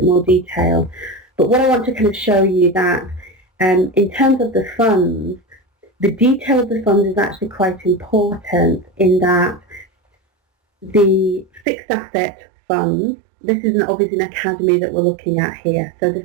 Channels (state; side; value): drops out; left; at 11.7 s